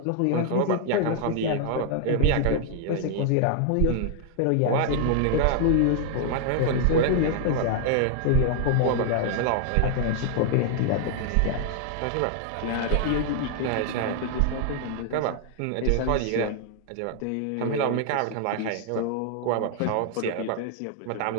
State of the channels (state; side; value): different; both; correlation 0.00